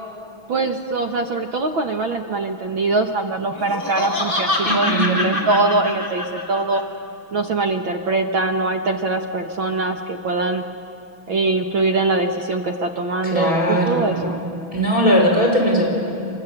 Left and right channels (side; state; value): left; late; 6.1 ms